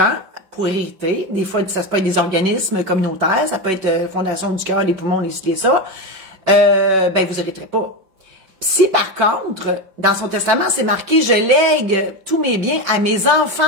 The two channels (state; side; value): late; left; 5.3 ms